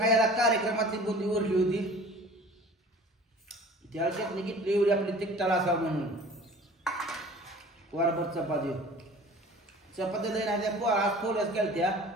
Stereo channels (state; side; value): normal; both; correlation 0.45